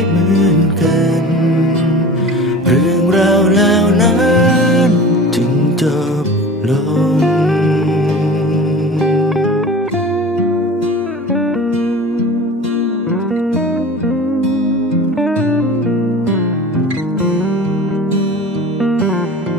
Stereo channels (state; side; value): normal; both; correlation 0.37